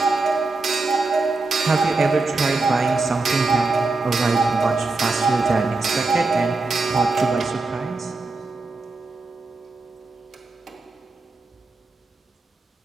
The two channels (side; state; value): left; quieter; 3.6 dB